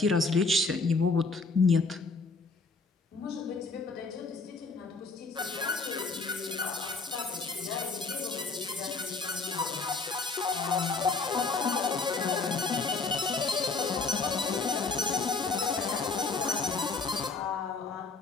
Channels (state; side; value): quieter; right; 4.0 dB